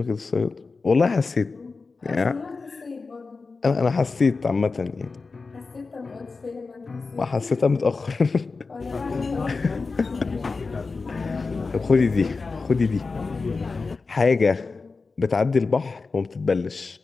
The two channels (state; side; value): quieter; right; 4.2 dB